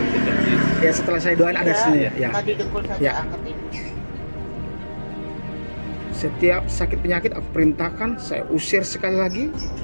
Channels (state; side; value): inverted; both; correlation -1.00